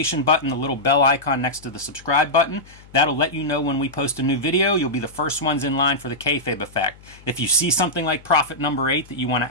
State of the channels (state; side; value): noise; left; hum, 23 dB below the sound